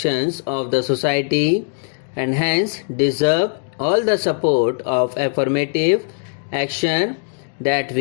of the society and hence deserve all the support of affirmative action that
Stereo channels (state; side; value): silent; right; 66 dB below the other